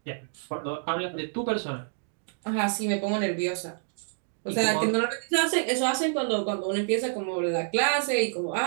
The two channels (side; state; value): left; silent; digital silence